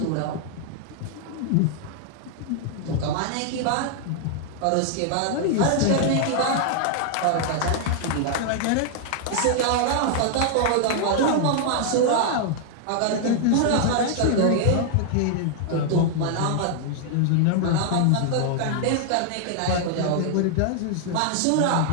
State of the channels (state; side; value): different; both; correlation 0.00